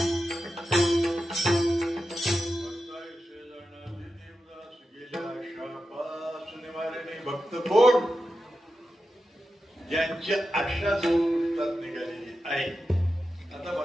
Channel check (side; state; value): both; normal; correlation 0.90